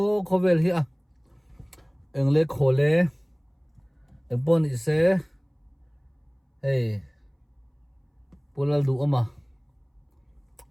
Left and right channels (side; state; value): both; identical; correlation 1.00